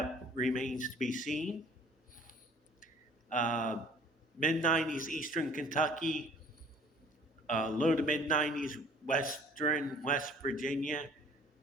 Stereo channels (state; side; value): normal; both; correlation 0.53